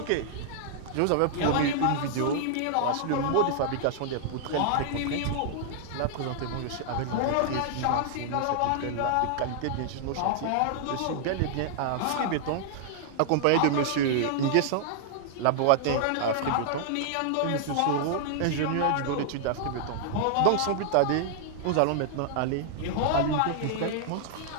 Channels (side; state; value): both; different; correlation -0.01